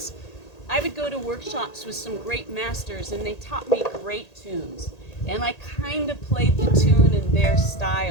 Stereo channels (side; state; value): right; late; 1.8 ms